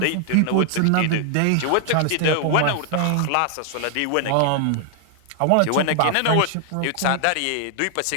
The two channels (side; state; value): both; different; correlation 0.00